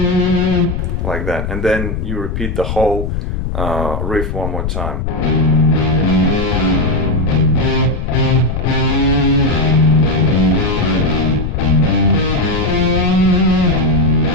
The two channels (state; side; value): noise; left; rumble, 4 dB below the sound